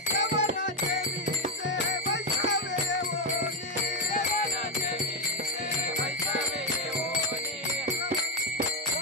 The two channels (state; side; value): normal; both; correlation 0.06